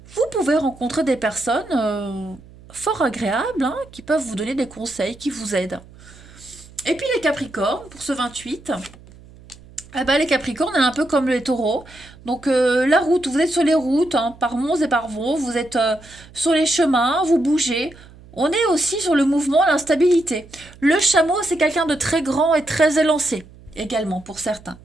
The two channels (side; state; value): right; noise; hum, 22 dB below the sound